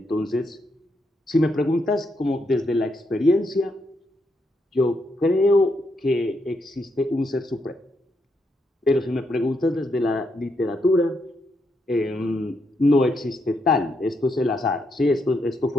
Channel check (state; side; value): normal; both; correlation 0.79